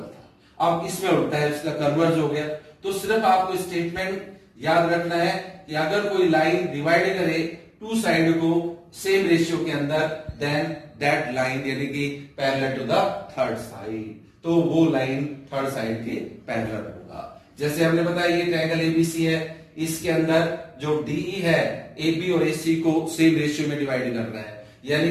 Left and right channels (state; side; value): identical; both; correlation 1.00